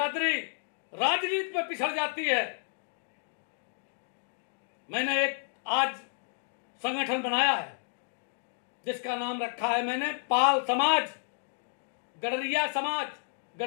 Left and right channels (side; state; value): right; silent; digital silence